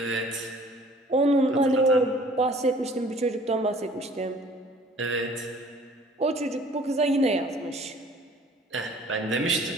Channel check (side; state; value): both; normal; correlation 0.53